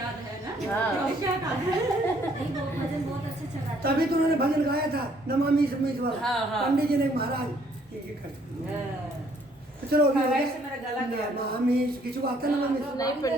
है ना हाँ। क्या गाना है? नहीं, वो भजन बहुत अच्छे से गाते तभी तो उन्होंने भजन गाया था नमामि समीस वाला। हाँ, हाँ। पंडित जी ने महाराज ये करते हाँ। तो चलो अभी हाँ, हो गया। वैसे मेरा गला गया। नमामि किसी को आता है नमामि? नहीं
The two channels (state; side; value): normal; both; correlation 0.64